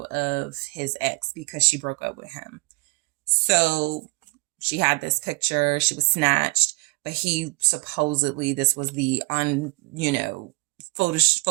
of his ex because she broke up with him. So she had this picture, she was snatched, but he supposedly, this was the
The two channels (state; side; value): quieter; left; 27.8 dB